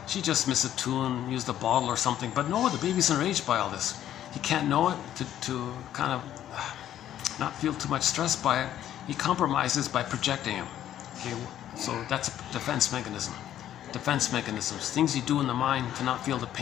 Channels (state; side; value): quieter; right; 11.5 dB